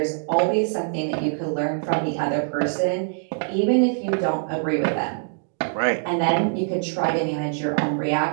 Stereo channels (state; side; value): silent; left; digital silence